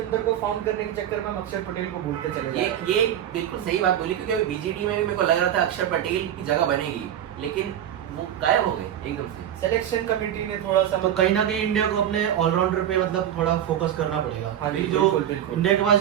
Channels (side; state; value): left; quieter; 10.5 dB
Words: को फाउंड करने के चक्कर में हम अक्षर पटेल को भूलते चले जाते हैं। ये बिल्कुल सही बात बोली, क्योंकि अभी BGT में भी मेरे को लग रहा था अक्षर पटेल की जगह बनेगी, लेकिन वो गायब हो गए एकदम से। सिलेक्शन कमेटी ने थोड़ा सा तो कहीं ना कहीं इंडिया को अपने ऑलराउंडर पे मतलब थोड़ा फोकस करना पड़ेगा। हाँ, अभी जो बिल्कुल। इंडिया के पास